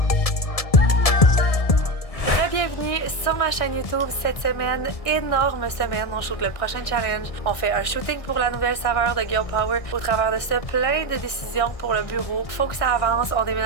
ma chaîne YouTube cette semaine, énorme semaine, on shoot le prochain challenge. On fait un shooting pour la nouvelle saveur de Girl Power. Au travers de ça, plein de décisions pour le bureau. Faut que ça avance, on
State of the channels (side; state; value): right; late; 1.7 ms